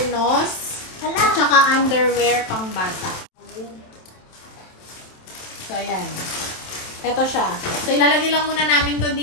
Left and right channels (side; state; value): right; late; 27 ms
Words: at saka underwear pang bata. So, ayan. Ito siya. So, ilalagay lang muna namin to